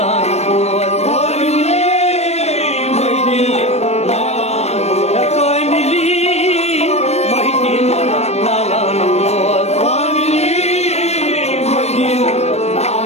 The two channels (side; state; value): right; late; 0.31 ms